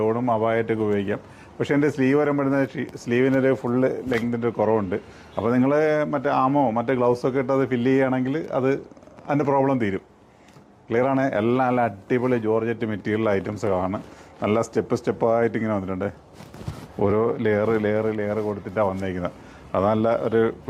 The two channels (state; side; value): identical; both; correlation 1.00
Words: അബായായിട്ടൊക്കെ ഉപയോഗിക്കാം. പക്ഷേ എൻ്റെ സ്ലീവ് വരുമ്പോഴത്തെ സ്ലീവിനൊരു ഫുള്ള് ലെങ്തിൻ്റെ ഒരു കുറവുണ്ട്. അപ്പോൾ നിങ്ങൾ മറ്റേ മറ്റേ ഗ്ലൗസൊക്കെ ഇട്ട് അത് ഫില്ല് ചെയ്യുകയാണെങ്കിൽ അതിൻ്റെ പ്രോബ്ലം തീരും. ക്ലിയറാണ്. എല്ലാം നല്ല അടിപൊളി ജോർജറ്റ് മെറ്റീരിയൽ ഐറ്റംസുകളാണ്. നല്ല സ്റ്റെപ്പായിട്ട് ഇങ്ങനെ വന്നിട്ടുണ്ട്. ഓരോ ലെയർ കൊടുത്തിട്ടാണ് വന്നിരിക്കുന്നത്. അത് നല്ല ഒരു